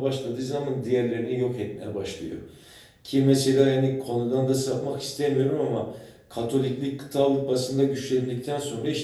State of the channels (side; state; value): both; identical; correlation 1.00